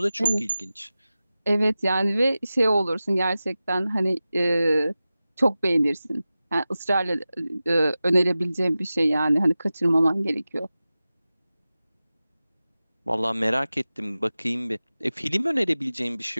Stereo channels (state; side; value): inverted; both; correlation -0.95